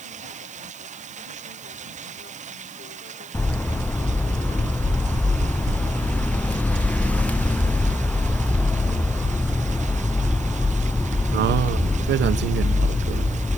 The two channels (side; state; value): right; noise; hiss, 21 dB below the sound